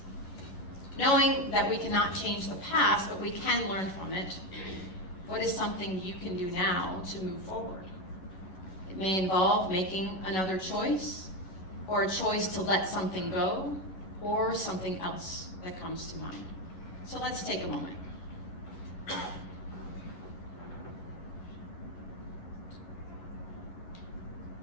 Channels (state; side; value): late; right; 11 ms